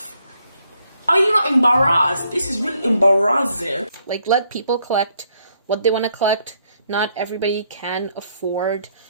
Are you not embarrassed? This is really embarrassing. Like, let people collect what they want to collect. Not everybody can afford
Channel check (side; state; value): both; inverted; correlation -0.71